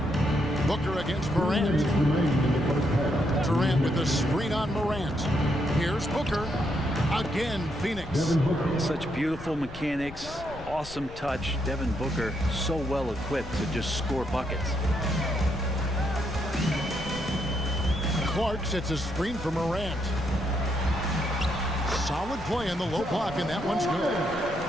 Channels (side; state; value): left; noise; rumble, 15 dB below the sound